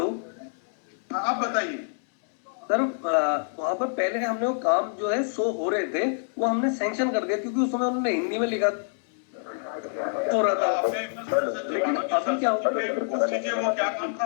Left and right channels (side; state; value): right; silent; digital silence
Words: आप बताइए सर। वहाँ पर पहले हमने वो काम जो है शो हो रहे थे, वो हमने सैंक्शन कर दिया, क्योंकि उस समय उन्होंने हिंदी में लिखा हो रहा था। लेकिन अभी क्या होगा, वो क्या काम था?